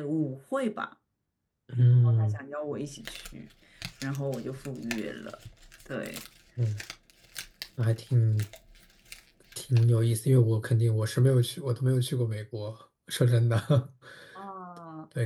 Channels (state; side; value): identical; both; correlation 1.00